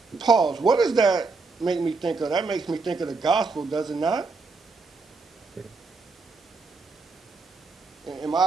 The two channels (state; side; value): quieter; left; 4.1 dB